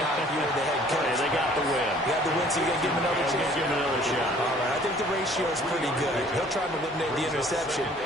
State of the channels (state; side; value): normal; both; correlation 0.55